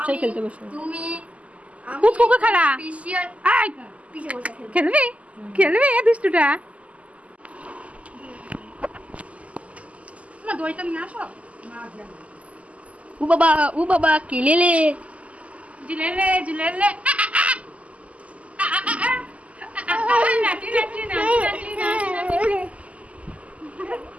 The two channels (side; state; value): left; late; 0.067 ms